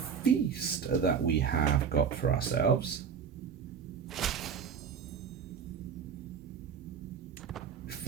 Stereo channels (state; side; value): quieter; left; 6.8 dB